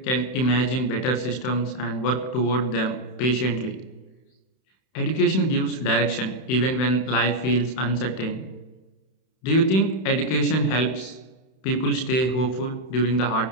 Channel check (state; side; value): late; right; 31 ms